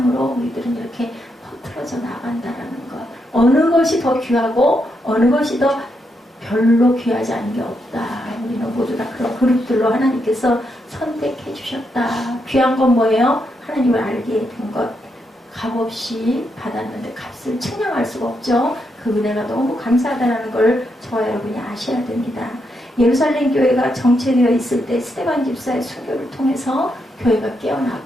우리들은 이렇게 퍼뜨려져 나간다라는 것. 어느 것이 더 귀하고 어느 것이 더 별로 귀하지 않은 게 없다. 우리는 모두 다 그런 그룹들로 하나님께서 선택해 주셨다. 귀한 건 뭐예요? 하나님을 알게 된 것. 값없이 받았는데 값을 측량할 수가 없죠. 그 은혜가 너무 감사하다는 걸 저와 여러분이 아셔야 됩니다. 예루살렘 교회가 정체되어 있을 때 스데반 집사의 순교를 통해서 교회가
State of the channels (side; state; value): both; normal; correlation 0.81